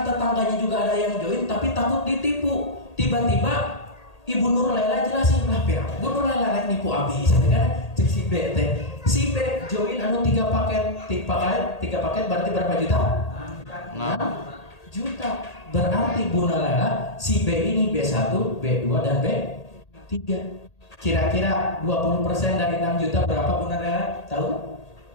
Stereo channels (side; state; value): right; late; 1.8 ms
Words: tetangganya juga ada yang join, tapi takut ditipu. Tiba-tiba Ibu Nurlela jelasin lah, Bu Nurlela rek nipu abis, kan? Cek si B teh. Si B join 3 paket, 3 paket berarti berapa juta? 6 juta. Berarti Bu Nurlela si B ini B1, B2 dan B3. Kira-kira 20% dari 6 juta berapa Bu Nurlela? Tahu?